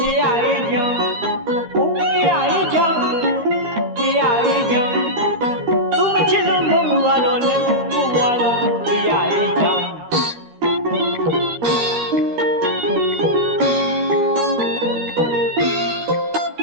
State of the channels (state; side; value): late; left; 13 ms